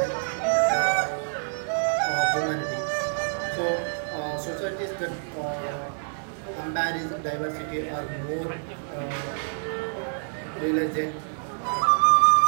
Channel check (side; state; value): left; silent; digital silence